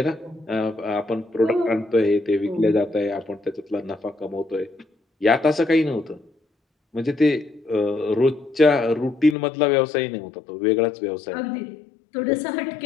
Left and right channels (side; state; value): right; drops out; at 9.3 s